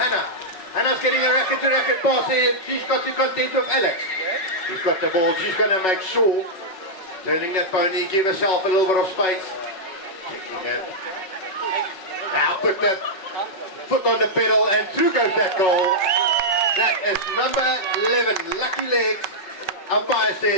Hannah's getting a racket-to-racket pass here. She's got to contend with Alex. She's got the ball. She's going to make sure. Turning that pony, give herself a little bit of space. Checking it. Now put the foot on the pedal and through goes that goal. That is number 11, Lucky Legs. Umpire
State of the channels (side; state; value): right; late; 5.4 ms